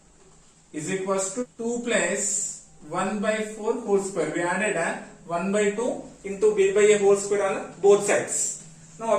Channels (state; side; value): identical; both; correlation 1.00